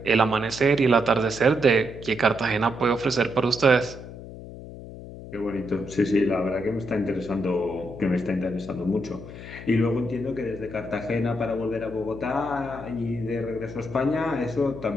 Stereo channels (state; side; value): noise; left; hum, 13 dB below the sound